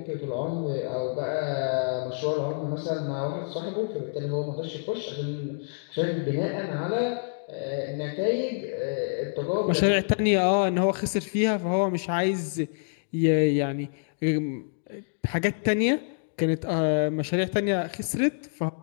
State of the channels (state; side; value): silent; right; digital silence